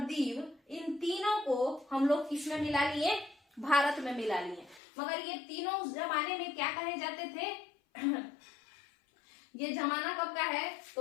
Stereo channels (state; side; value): drops out; right; at 4.8 s